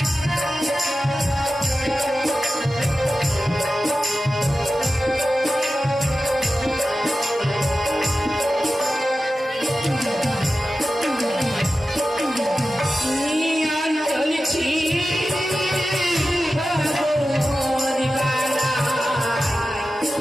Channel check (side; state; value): both; normal; correlation 0.94